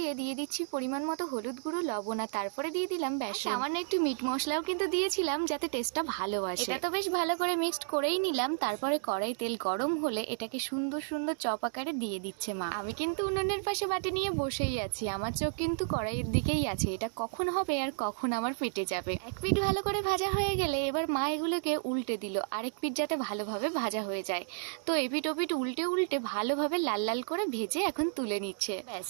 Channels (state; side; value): silent; left; digital silence